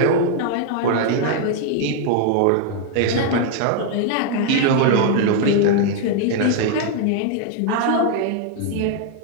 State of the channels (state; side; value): different; both; correlation 0.00